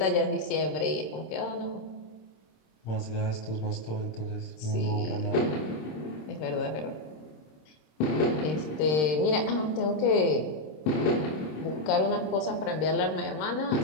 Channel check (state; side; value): late; right; 26 ms